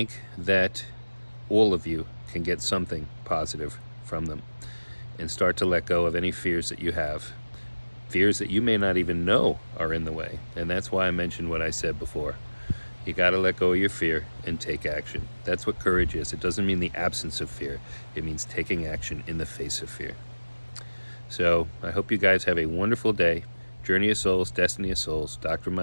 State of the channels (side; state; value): both; inverted; correlation -1.00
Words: that all of you can get something positive from them and start to let go of any fears that you have, fears that you may not even know are in the way. And that's why I mentioned what I said before. You got to let go of your fear and take action. That's what courage is. It doesn't mean the absence of fear. It means taking action in the face of fear. So I hope you guys have a wonderful day. Journey of Souls, Destiny of Souls, Dr.